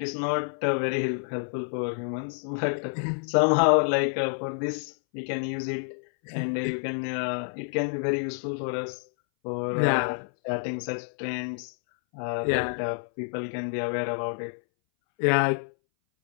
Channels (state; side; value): silent; right; 59 dB below the other